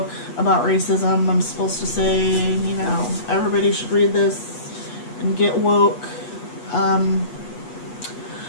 about racism. I'm supposed to say, you know, everybody should read this and get woke.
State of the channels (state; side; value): late; right; 8.3 ms